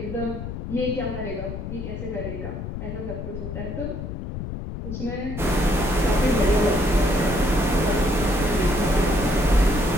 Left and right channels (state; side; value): noise; left; rumble, 7 dB below the sound